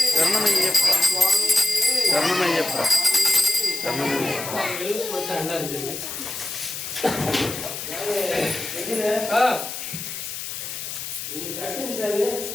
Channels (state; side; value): noise; left; hiss, 7 dB below the sound